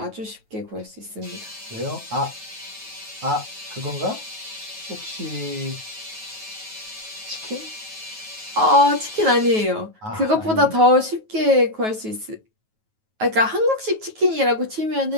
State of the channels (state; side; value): late; left; 9.3 ms